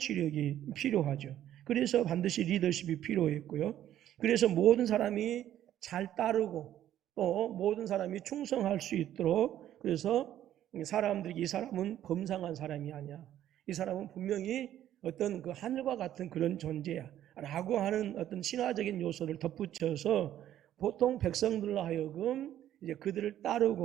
필요하죠. 그래서 반드시 리더십이 필요했고요. 그래서 모든 사람이 잘 따르고 또 모든 사람이 충성할 수 있도록, 그래서 사람들이 이 사람은 범상한 사람이 아니야, 이 사람은 분명히 어떤 그 하늘과 같은 그런 존재야 라고 하는 어떤 신화적인 요소를 덧붙여서 보통 백성들로 하여금 이제 그들을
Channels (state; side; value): quieter; left; 11.8 dB